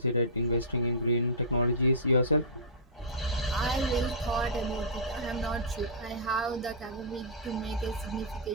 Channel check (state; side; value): normal; both; correlation -0.19